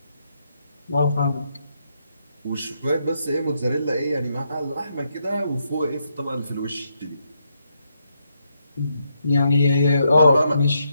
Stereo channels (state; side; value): inverted; both; correlation -0.79